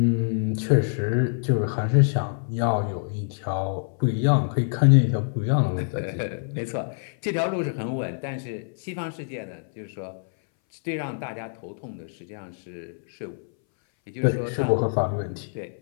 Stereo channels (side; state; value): right; silent; 61 dB below the other